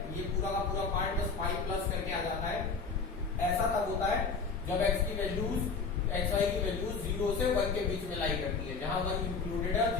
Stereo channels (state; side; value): quieter; right; 4.8 dB